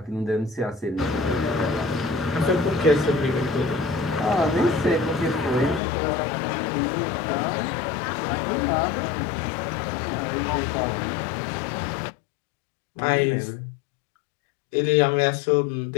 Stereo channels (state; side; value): drops out; right; at 5.8 s